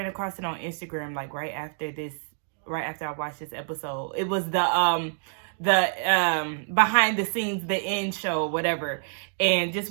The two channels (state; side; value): silent; left; digital silence